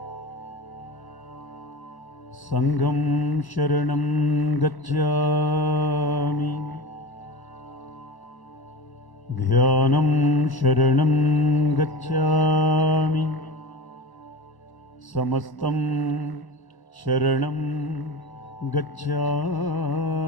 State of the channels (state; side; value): late; right; 1.1 ms